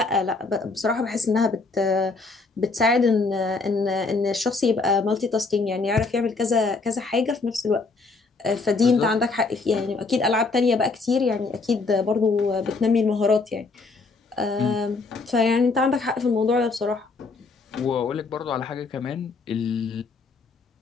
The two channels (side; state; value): right; quieter; 4.0 dB